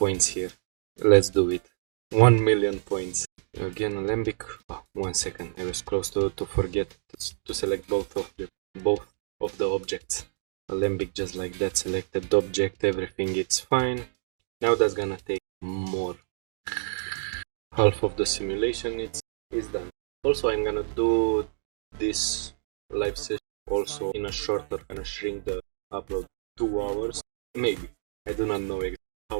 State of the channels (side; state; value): left; silent; digital silence